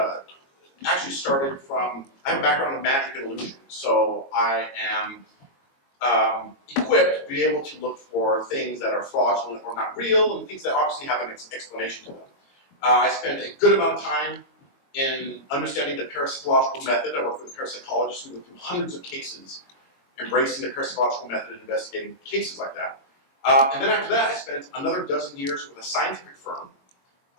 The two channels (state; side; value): late; right; 22 ms